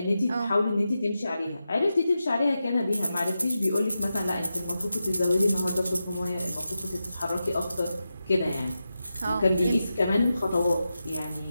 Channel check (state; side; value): inverted; both; correlation -0.90